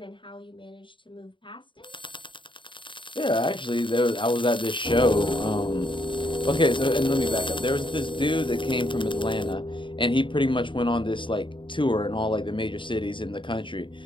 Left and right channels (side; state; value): right; late; 0.24 ms